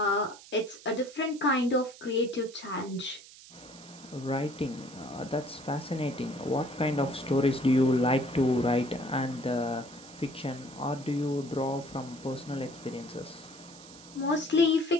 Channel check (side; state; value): right; noise; hiss, 19 dB below the sound